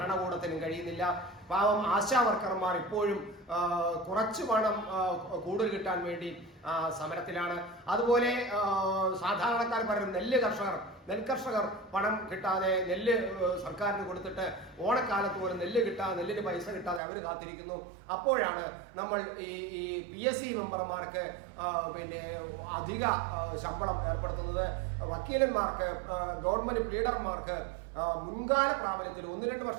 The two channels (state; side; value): drops out; left; at 17.0 s